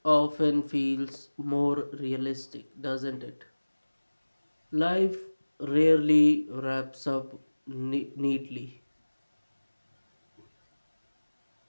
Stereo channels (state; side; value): inverted; both; correlation -1.00